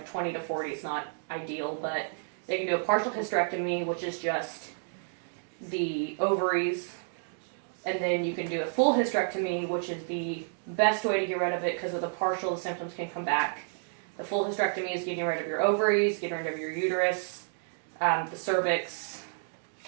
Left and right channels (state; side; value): silent; left; digital silence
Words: 20 to 40 is not ideal, but they can do a partial hysterectomy, which is just the ovaries, and then you can do a full hysterectomy, which is the best way to get rid of it, because with the partial, the symptoms can come back. The full hysterectomy is getting rid of your ovaries, getting rid of your uterus, the cervix,